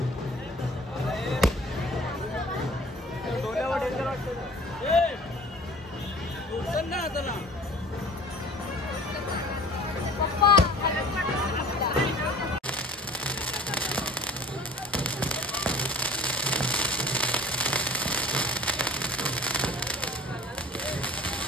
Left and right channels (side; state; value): both; normal; correlation 0.46